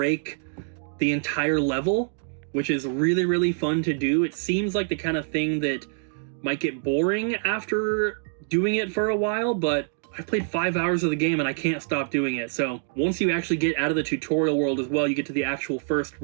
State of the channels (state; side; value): silent; left; digital silence